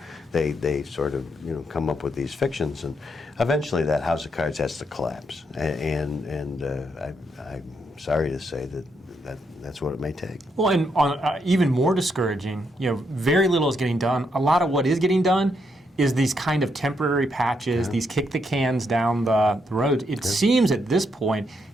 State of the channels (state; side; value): normal; both; correlation 0.78